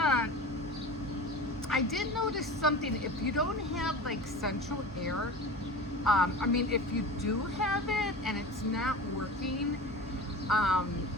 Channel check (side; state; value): both; normal; correlation 0.33